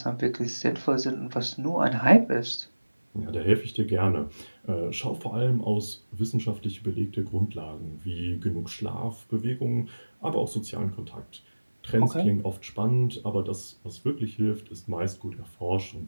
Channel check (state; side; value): inverted; both; correlation -1.00